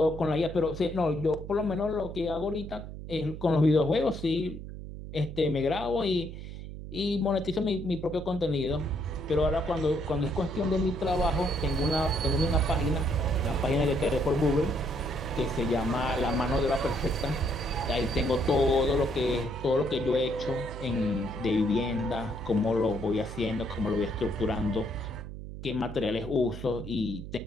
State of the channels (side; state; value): right; noise; hum, 10 dB below the sound